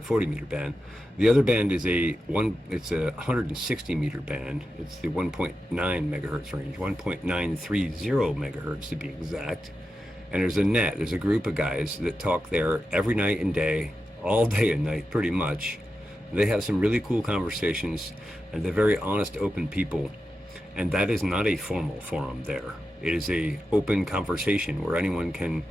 meter band. The other band is it's a 160 meter band. It's the 1.9 megahertz range, 1.930 megahertz to be exact. And there's a group of guys that talk there every night and day, all day and night pretty much. They have some really cool conversations, and they're very honest, open people. And that is not a formal forum there. It is a open conversation where anyone can,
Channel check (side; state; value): both; normal; correlation 0.90